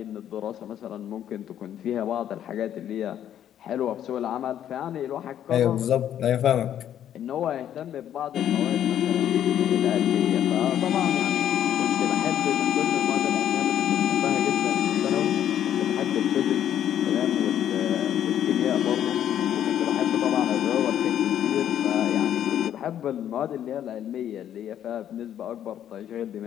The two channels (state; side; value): quieter; right; 10.5 dB